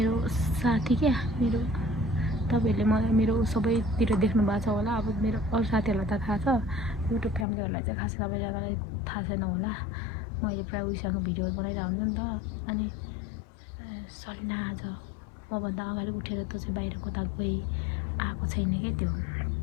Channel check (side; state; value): right; drops out; at 7.5 s